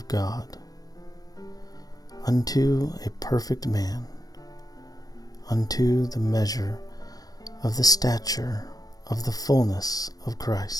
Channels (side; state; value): right; late; 0.18 ms